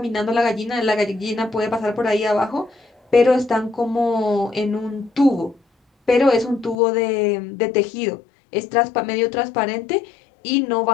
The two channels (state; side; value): drops out; right; at 6.8 s